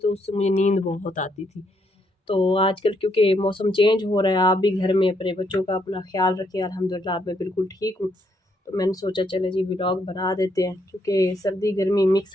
उससे मुझे नींद बहुत आती थी। तो आजकल क्योंकि मौसम चेंज हो रहा है, आप भी घर में अपने बच्चों का अपना ख़्याल रखें। अल्हम्दुलिल्लाह अब मैं बिल्कुल ठीक हूँ। तो मैंने सोचा चलें जी व्लॉग बना देते हैं, क्योंकि सर्दी गर्मी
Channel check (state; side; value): normal; both; correlation 0.75